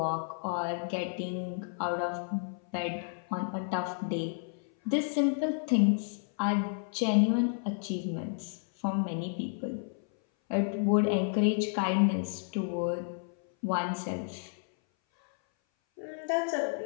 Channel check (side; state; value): right; silent; 57 dB below the other